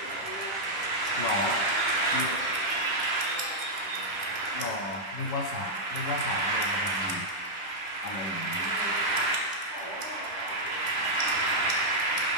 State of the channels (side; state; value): right; late; 9.8 ms